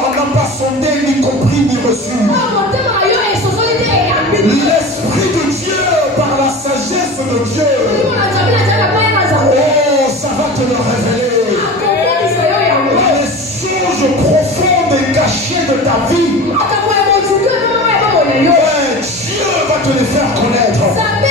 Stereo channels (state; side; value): normal; both; correlation 0.33